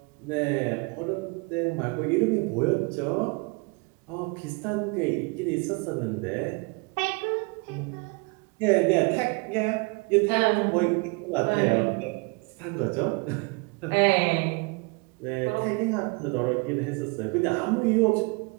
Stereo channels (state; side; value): quieter; left; 29.5 dB